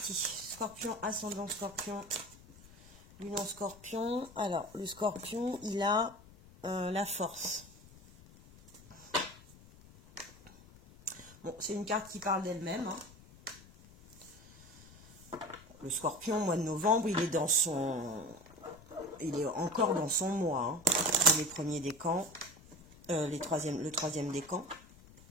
Scorpion, ascendant scorpion, lune en scorpion. Alors, le scorpion, il a la force. Bon, c'est une carte qui parle d'elle-même. Hein. Le scorpion, mois de novembre, il est encore dans son mois. Hein. Les premiers décans, le troisième décan.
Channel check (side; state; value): left; noise; rumble, 22 dB below the sound